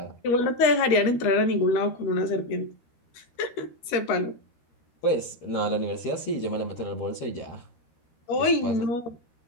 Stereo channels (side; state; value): right; late; 13 ms